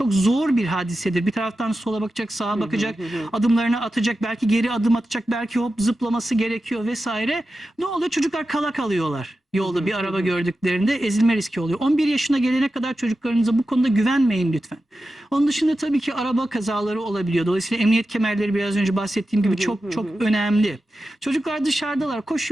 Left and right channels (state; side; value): normal; both; correlation 0.92